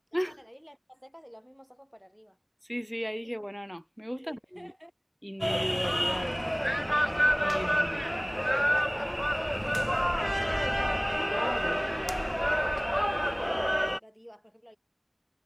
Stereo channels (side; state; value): both; identical; correlation 1.00